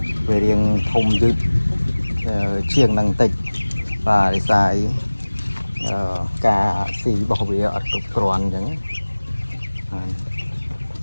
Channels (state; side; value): inverted; both; correlation -1.00